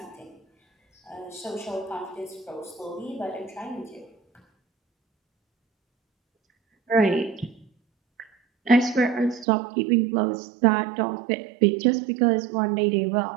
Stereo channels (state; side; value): drops out; left; at 9.5 s